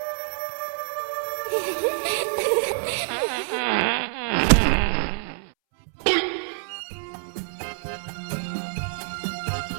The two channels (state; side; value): silent; left; 61 dB below the other